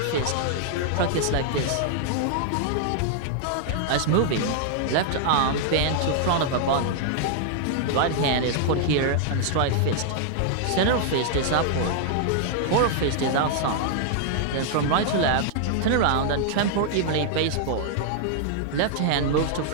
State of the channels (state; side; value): different; both; correlation -0.01